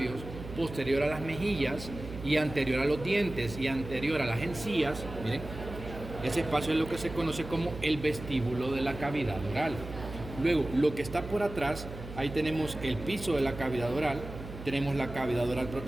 posterior a las mejillas y anterior a los dientes y anterior a las encías, miren, ese espacio es lo que se conoce como el vestíbulo de la cavidad oral. Luego, lo que está por atrás, ahí tenemos el piso de la cavidad oral, tenemos la cavidad oral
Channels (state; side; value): noise; right; hum, 12 dB below the sound